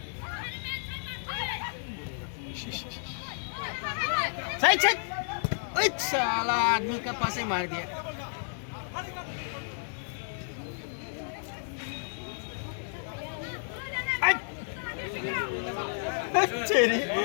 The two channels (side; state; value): right; silent; 57 dB below the other